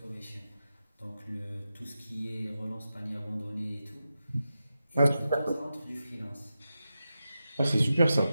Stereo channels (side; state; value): both; inverted; correlation -0.91